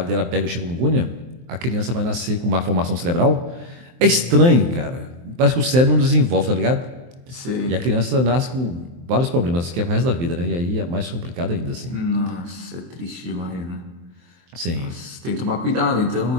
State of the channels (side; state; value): left; late; 23 ms